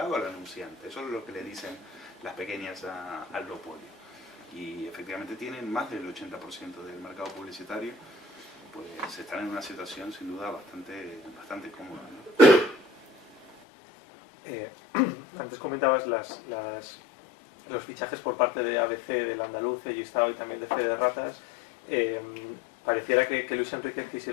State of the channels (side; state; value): right; drops out; at 13.5 s